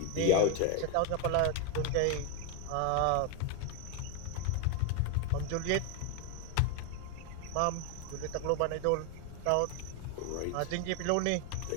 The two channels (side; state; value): both; different; correlation 0.01